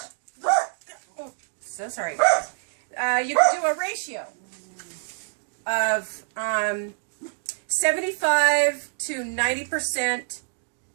Oh, so sorry. You could do a ratio of 75 to 90%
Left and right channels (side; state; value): left; silent; 61 dB below the other